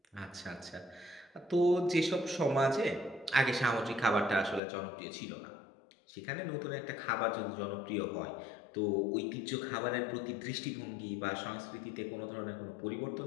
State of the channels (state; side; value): drops out; right; at 4.6 s